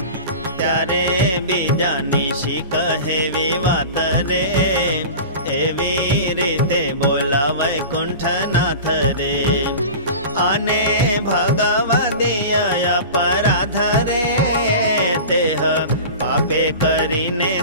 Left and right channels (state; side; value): inverted; both; correlation -0.34